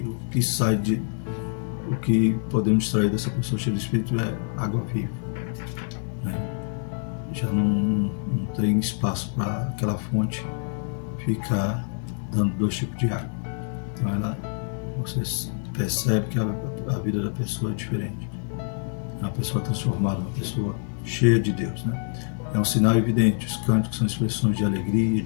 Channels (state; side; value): silent; right; 61 dB below the other